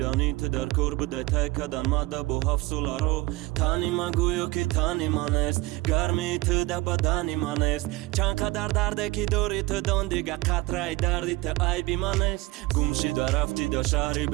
تو در کار بوده تای کدن مده با 7 ساله رو تنی من گویو که تنی من است گرمی تو در بدنی من است چند قدر درده که داری تو دان دیگه قطره دردی تو عیبی من است گم شده رفتی در شهری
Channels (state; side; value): quieter; left; 20.1 dB